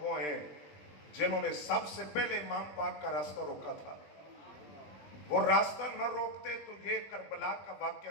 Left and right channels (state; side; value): late; right; 20 ms